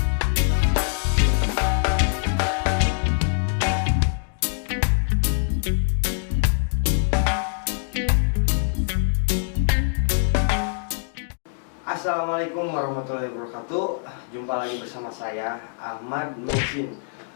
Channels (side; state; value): right; silent; digital silence